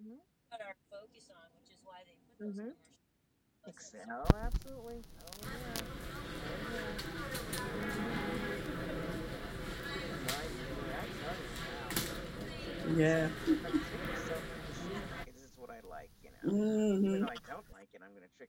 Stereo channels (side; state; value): both; identical; correlation 1.00